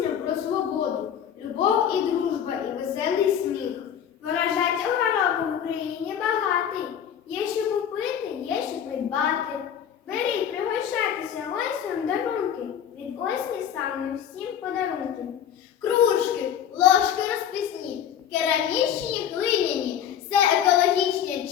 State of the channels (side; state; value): right; quieter; 9.2 dB